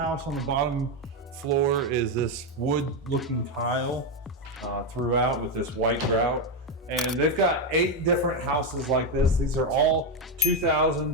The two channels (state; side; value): normal; both; correlation 0.08